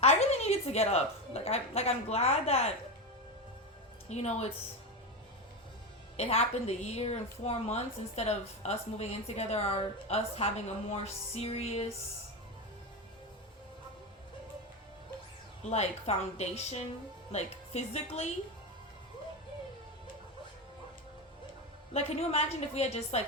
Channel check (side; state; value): both; normal; correlation 0.16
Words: I really needed to get up. I'm glad that, you know, it happened a year and 4 months instead of us moving in together or us having a more serious, like, foundation, like, physically. Like, can you imagine if we had just,